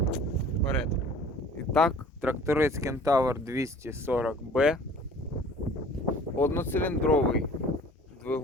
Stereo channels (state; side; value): normal; both; correlation 0.49